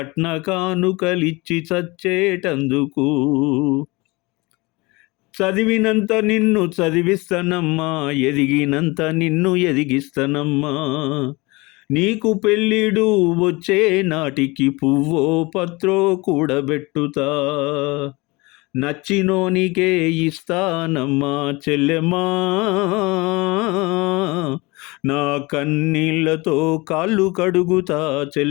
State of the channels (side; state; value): right; quieter; 24.4 dB